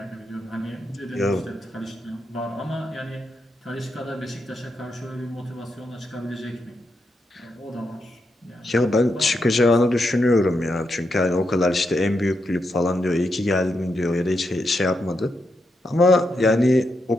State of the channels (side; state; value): both; normal; correlation 0.83